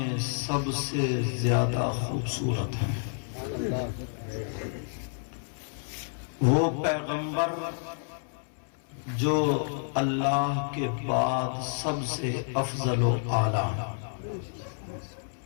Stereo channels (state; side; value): silent; right; 58 dB below the other